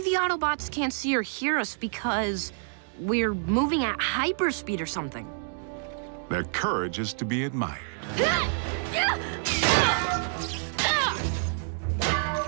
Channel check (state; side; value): silent; left; 60 dB below the other